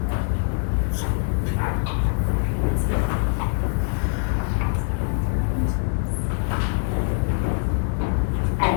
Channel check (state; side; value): silent; right; 63 dB below the other